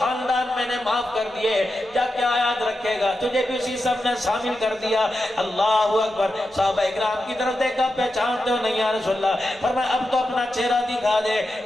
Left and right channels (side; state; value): right; noise; hum, 29 dB below the sound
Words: میں نے معاف کر دیے، جا کیا یاد رکھے گا، تجھے بھی اسی سب نے شامل کر دیا۔ اللہ اکبر، صحابہ اکرام کی طرف دیکھا، پہچانتے ہو نہیں یا رسول اللہ؟ فرمایا اب تو اپنا چہرہ دکھا دے۔